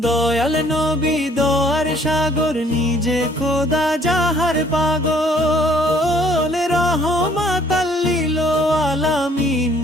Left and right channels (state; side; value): normal; both; correlation 0.60